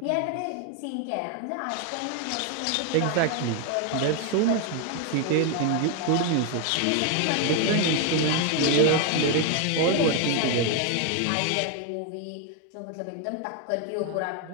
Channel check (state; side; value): different; both; correlation 0.01